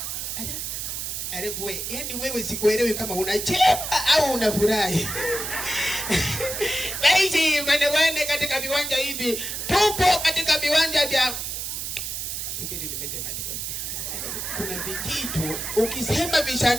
Wewe, yani wewe sikuelewi kama unacheka au unafurahi. Basi mwanawane katika viwanja hivi, tupo katika viwanja vya subiri nimesemaje kwa. Kuna vijito ukisema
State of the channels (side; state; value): right; noise; hiss, 4 dB below the sound